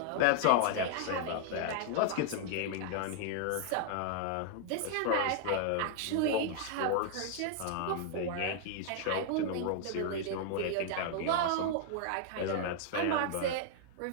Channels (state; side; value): different; both; correlation -0.01